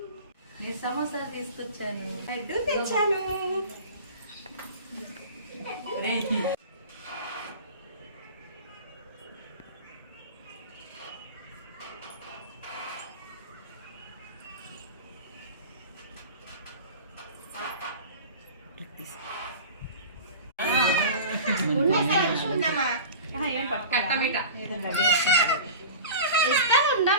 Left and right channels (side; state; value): both; inverted; correlation -0.36